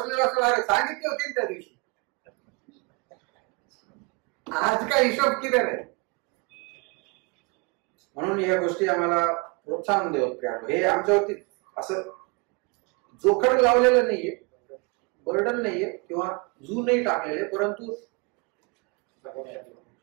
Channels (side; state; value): left; quieter; 29.8 dB